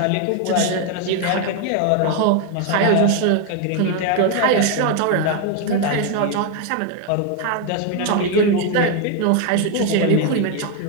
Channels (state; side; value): different; both; correlation 0.01